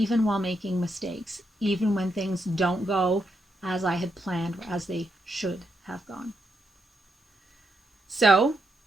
while making mistakes, even when things don't go as I had planned or as they should have gone. So,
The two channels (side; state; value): both; normal; correlation 0.81